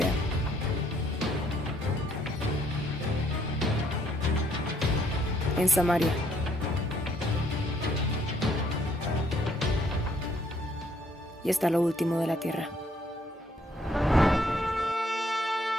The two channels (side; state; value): both; normal; correlation 0.68